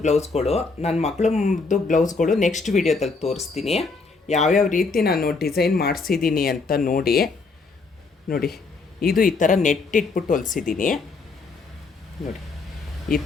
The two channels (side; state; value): right; quieter; 4.2 dB